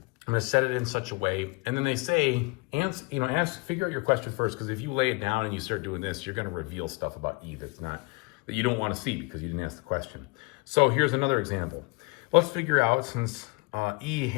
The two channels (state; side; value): quieter; right; 27.8 dB